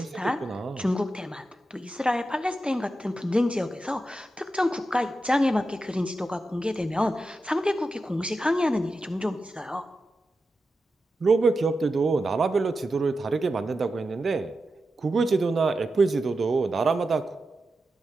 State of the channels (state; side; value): normal; both; correlation 0.90